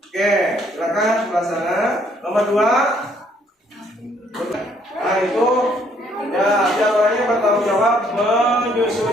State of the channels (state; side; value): normal; both; correlation 0.66